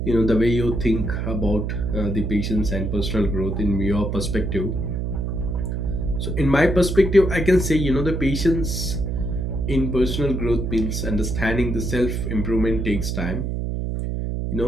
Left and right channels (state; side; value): noise; right; hum, 2 dB below the sound